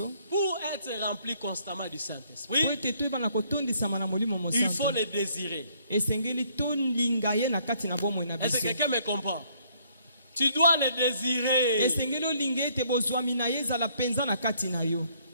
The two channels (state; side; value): inverted; both; correlation -0.66